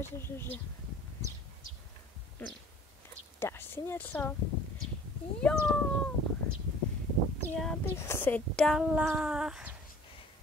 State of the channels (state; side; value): normal; both; correlation 0.50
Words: že. Dáš si něco? Jo. Já bych si dala